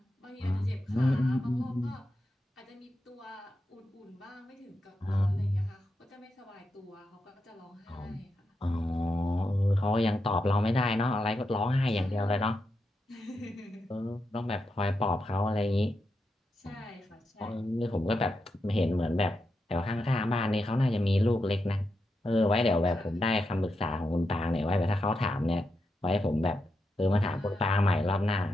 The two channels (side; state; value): both; normal; correlation 0.86